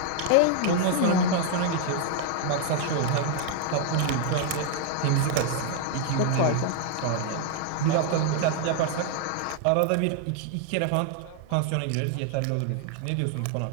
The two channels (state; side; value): different; both; correlation 0.00